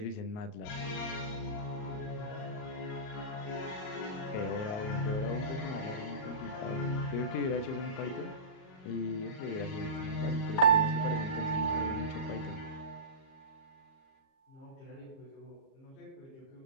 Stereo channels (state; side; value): late; right; 38 ms